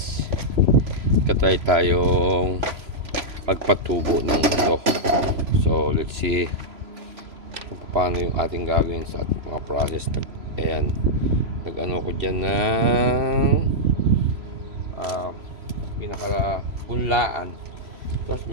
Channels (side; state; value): left; late; 3.0 ms